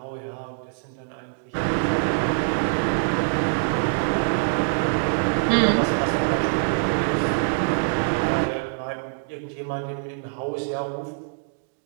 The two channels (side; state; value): left; silent; digital silence